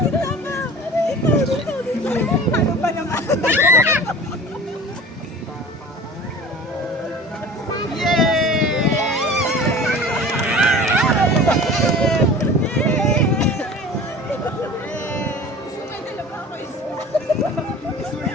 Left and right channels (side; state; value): both; normal; correlation 0.40